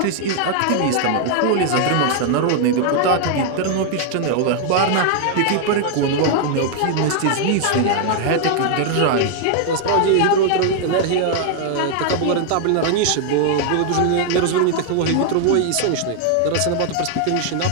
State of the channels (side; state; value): both; different; correlation 0.00